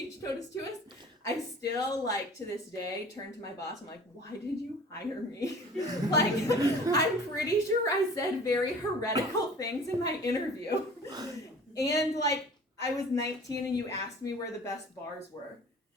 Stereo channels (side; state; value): both; normal; correlation 0.45